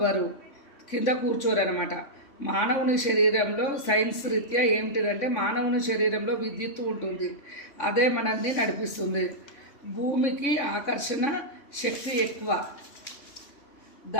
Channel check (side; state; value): right; late; 3.6 ms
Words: కింద కూర్చోరనమాట. మానవుని శరీరంలో సైన్స్ రీత్యా ఏమిటిదంటే మానవుని శరీరంలో విద్యుత్తు ఉంటుంది, అదే మనల్ని నడిపిస్తుంది. భూమికి ఆకర్షణ శక్తి ఎక్కువ,